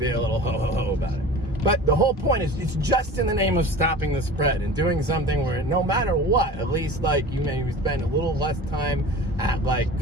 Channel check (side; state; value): both; normal; correlation 0.37